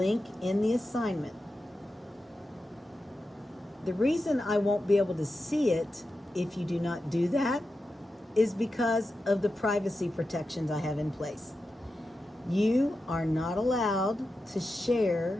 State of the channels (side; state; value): both; normal; correlation 0.91